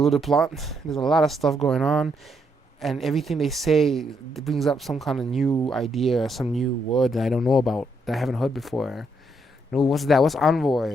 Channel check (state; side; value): normal; both; correlation 0.76